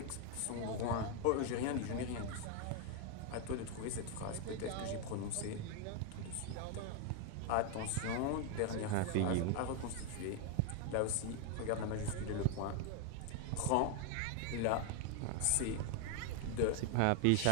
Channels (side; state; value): both; different; correlation 0.01